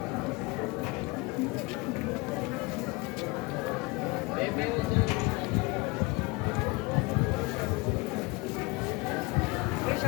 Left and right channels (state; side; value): quieter; right; 25.2 dB